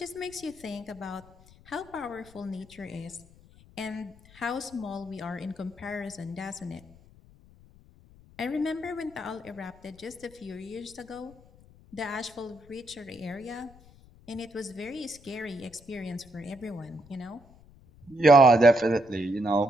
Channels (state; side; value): noise; left; rumble, 24 dB below the sound